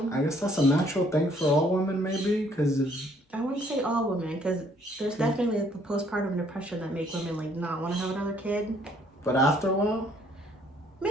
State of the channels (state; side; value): normal; both; correlation 0.64